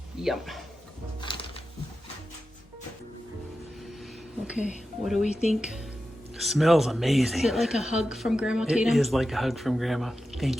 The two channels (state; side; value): normal; both; correlation 0.92